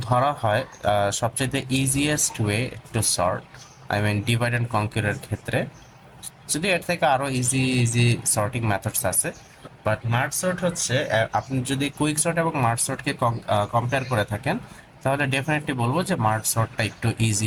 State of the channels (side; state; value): both; identical; correlation 1.00